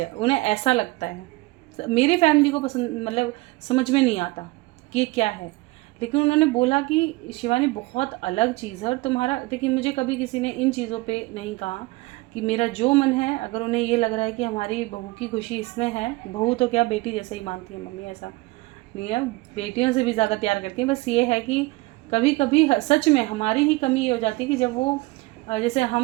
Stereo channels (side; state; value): left; quieter; 21.9 dB